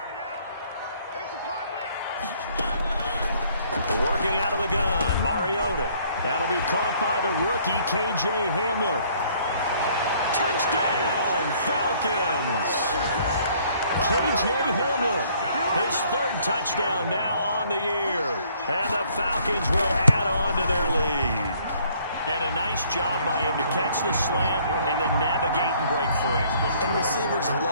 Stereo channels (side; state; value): both; inverted; correlation -0.62